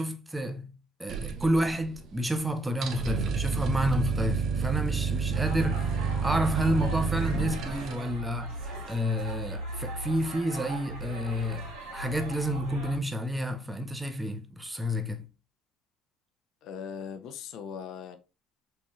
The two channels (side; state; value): both; normal; correlation 0.70